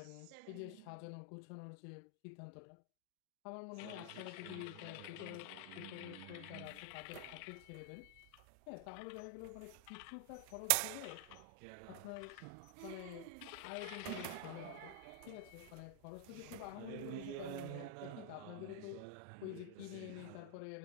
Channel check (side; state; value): both; different; correlation 0.00